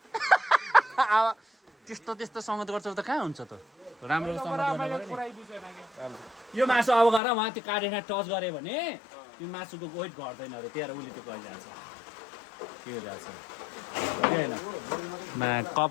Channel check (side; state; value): right; drops out; at 7.2 s